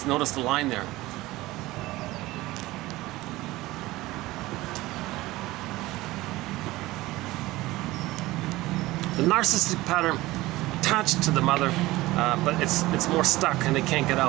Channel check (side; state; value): left; quieter; 18.6 dB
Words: notice the line there. The narcissistic pattern attached to the mother, but it's more stuck and they can't get